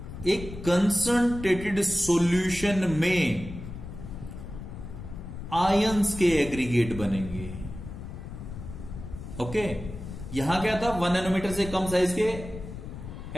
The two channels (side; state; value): left; noise; rumble, 10 dB below the sound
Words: एक कंसंट्रेटेड सॉल्यूशन में आयंस के एग्रीगेट बनेंगे। ओके, यहां क्या था, 1 नैनोमीटर से कम साइज के